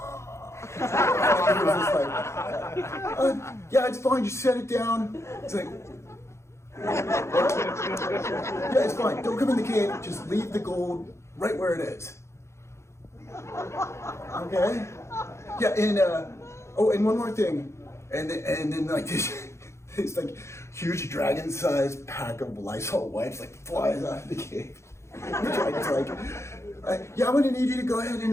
and he was just like, yeah, it's fine, just set it down. It's like, yeah, it's fine, don't come in the cave, just leave the gold right where it is. Okay? Yeah, and and one more thing, and then like this like huge dragon-sized pack of Lysol wipes like flies out of the cave. The dragon's like, yeah, I'm gonna need you to go ahead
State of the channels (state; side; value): late; right; 0.13 ms